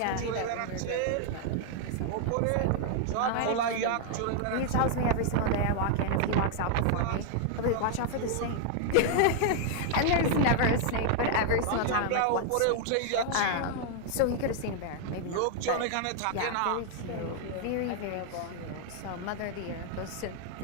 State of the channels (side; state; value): both; different; correlation 0.00